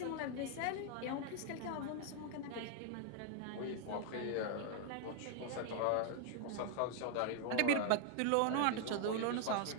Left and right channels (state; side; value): different; both; correlation 0.00